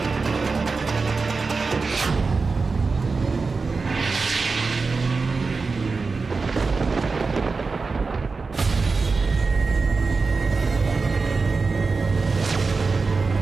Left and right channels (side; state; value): left; quieter; 4.3 dB